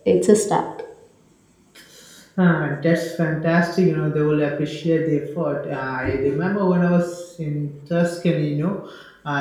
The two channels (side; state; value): both; identical; correlation 1.00